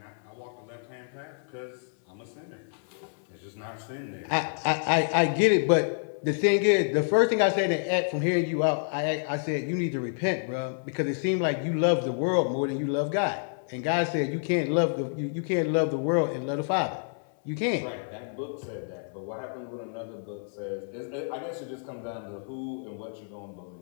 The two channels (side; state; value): right; silent; 59 dB below the other